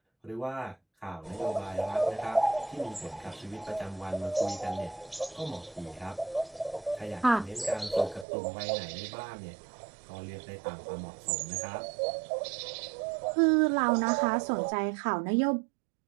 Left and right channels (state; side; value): drops out; left; at 8.2 s